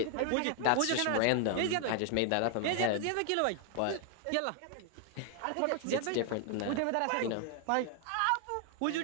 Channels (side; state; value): both; different; correlation 0.00